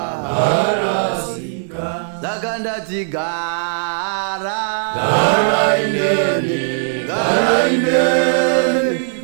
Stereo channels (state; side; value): silent; left; digital silence